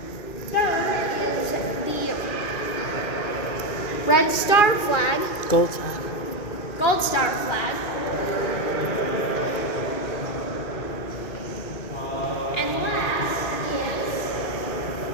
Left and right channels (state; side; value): late; right; 2.4 ms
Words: Third is the Red Star flag, Gold star. Gold Star flag, and last is